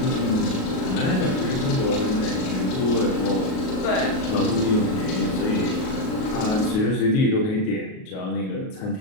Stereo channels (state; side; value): late; right; 38 ms